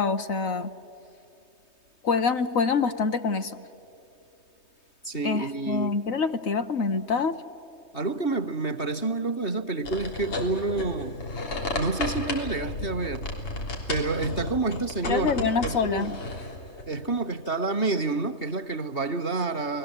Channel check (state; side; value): late; right; 3.2 ms